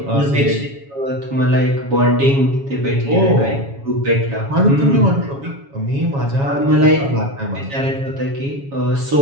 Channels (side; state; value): left; late; 7.2 ms